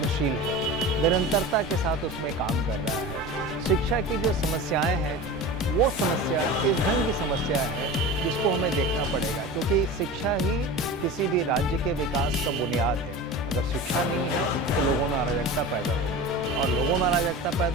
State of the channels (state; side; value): normal; both; correlation 0.32